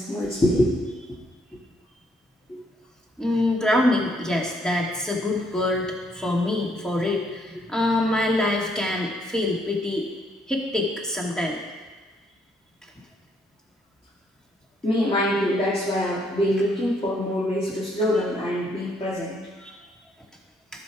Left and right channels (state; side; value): normal; both; correlation 0.71